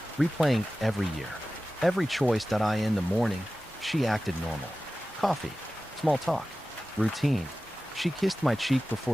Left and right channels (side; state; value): both; normal; correlation 0.95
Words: replaying every year. Every choice. In the morning, she acted normal. Coffee. Small talk. Routine. She kissed my cheek